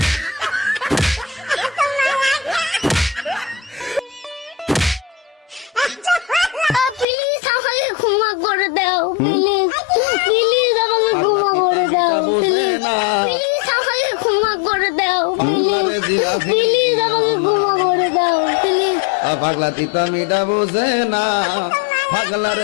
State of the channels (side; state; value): right; drops out; at 7.1 s